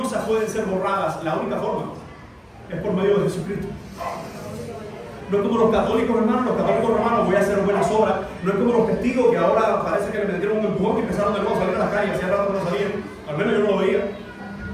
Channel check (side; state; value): both; identical; correlation 1.00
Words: pueden ser borradas? La única forma es por medio de Jesucristo. No es como los católicos, hermanos. Los católicos romanos: voy a hacer buenas obras. No es como los testigos que ahora parece que le metieron un empujón y empezaron de nuevo a salir a la calle. Hacía rato que no salían. Al menos yo no lo veía.